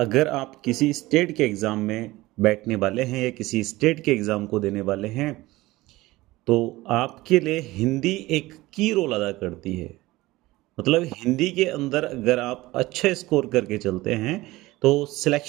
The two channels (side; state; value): left; quieter; 19.0 dB